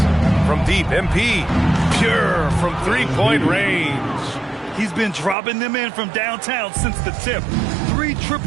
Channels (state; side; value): drops out; left; at 5.4 s